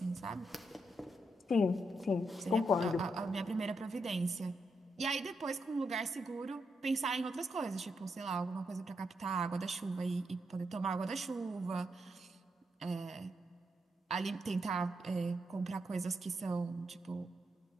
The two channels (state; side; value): normal; both; correlation 0.81